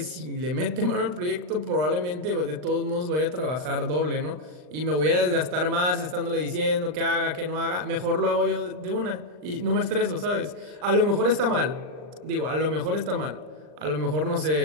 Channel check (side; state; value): left; late; 39 ms